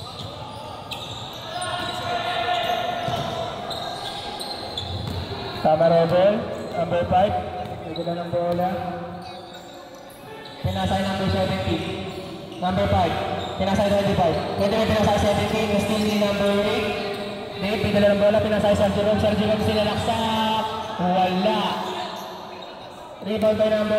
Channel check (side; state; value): both; identical; correlation 1.00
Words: Tama rebel. Number 5, may dala ng bola. Pinasa yung number 17. Number 5, pinasa yung 25. Pwede may pinasa yung 17, still ni number 8. May dala ng bola, pinasa yung Sergio Rom. Sergio Rom sinalaksak. Wala. Rebound by